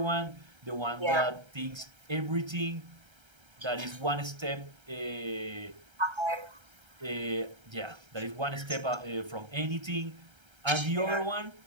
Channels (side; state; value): left; late; 1.3 ms